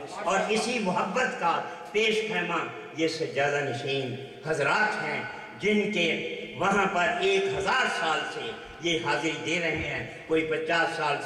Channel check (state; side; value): identical; both; correlation 1.00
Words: اور اسی محبت کا پیش خیمہ یہ سجادہ نشین حضرات ہیں جن کے وہاں پر 1000 سال سے یہ حاضری دے رہے ہیں، کوئی 50 سال